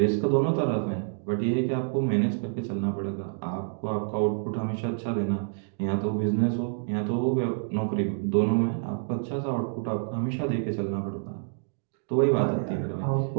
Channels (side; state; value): left; silent; digital silence